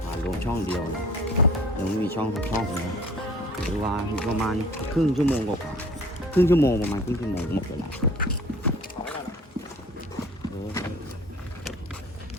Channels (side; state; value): both; normal; correlation 0.49